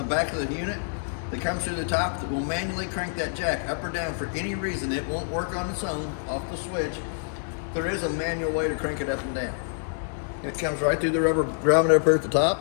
back of the unit that comes through the top that will manually crank that jack up or down for any reason. It won't work on its own off the switch. There is a manual way to crank it up and down. It comes right through the rubber grommet up here at the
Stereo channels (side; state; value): right; silent; digital silence